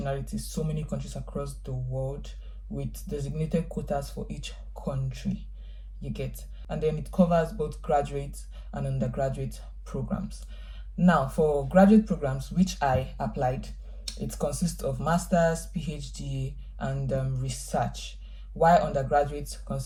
so many countries across the world, with designated quotas for each country, you get. And then it covers both graduate and undergraduate programs. Now for graduate programs, which I applied, it consists of master's, PhD, and research, while undergraduate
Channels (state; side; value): identical; both; correlation 1.00